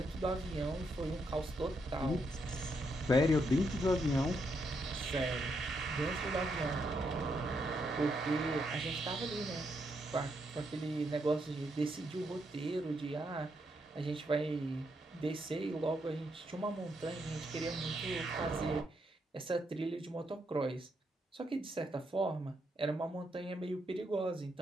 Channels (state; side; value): normal; both; correlation 0.79